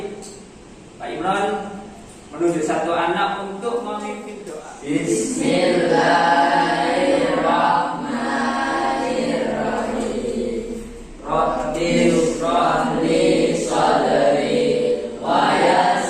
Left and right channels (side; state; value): both; identical; correlation 1.00